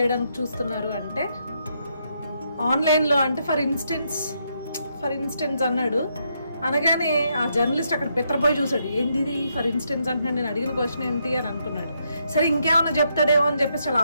చూస్తున్నారు అంటే, ఆన్లైన్లో అంటే ఫర్ ఇన్స్టెన్స్ అన్నాడు. అనగానే ఆ జర్నలిస్ట్ అక్కడ పెత్తరపోయి చూశాడు, ఏంది ఇది ఫర్ ఇన్స్టెన్స్ అంటున్నాడు, నేను అడిగిన క్వశ్చన్ ఏంటి అని అనుకున్నాడు. సరే ఇంకేమన్నా చెప్తాడేమో అని చెప్పేసి చాలా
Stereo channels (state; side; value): inverted; both; correlation -0.78